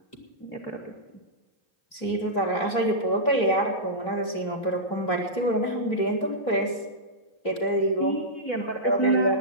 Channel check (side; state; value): right; late; 3.2 ms